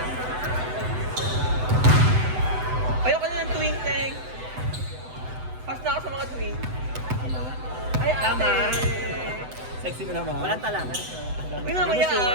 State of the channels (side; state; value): left; late; 7.9 ms